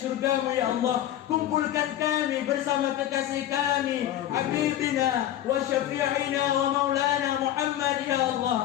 ya Allah, kumpulkan kami bersama kekasih kami, Habibina wa syafi'ina wa maulana Muhammad ya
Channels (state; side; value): quieter; right; 12.3 dB